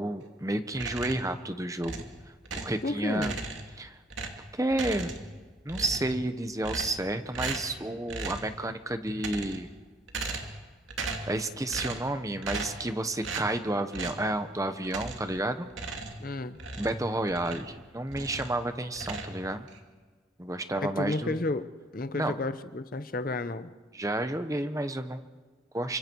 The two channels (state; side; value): normal; both; correlation 0.63